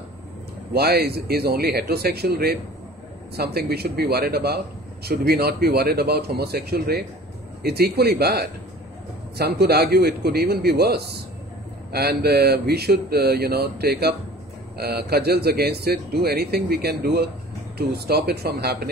Why is only heterosexual rape something we should be worried about? Should we not be worried about homosexual rape? It's equally bad. Some could argue it could even be worse. and we should, take up cudgels against it, do anything we can do to stop it from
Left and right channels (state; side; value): normal; both; correlation 0.45